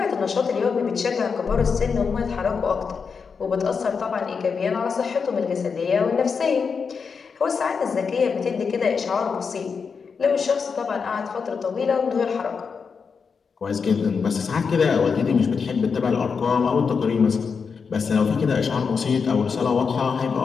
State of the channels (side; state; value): right; quieter; 5.6 dB